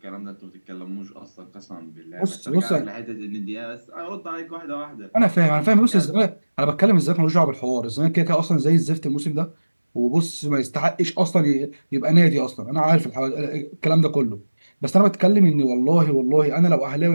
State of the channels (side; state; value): both; inverted; correlation -1.00